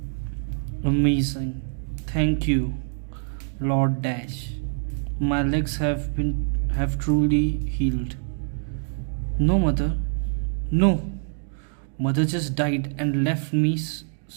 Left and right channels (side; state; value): left; silent; 62 dB below the other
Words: Amazing. Thank you, Lord Dash. My legs have truly healed. No, mother. No. Mother just died and left me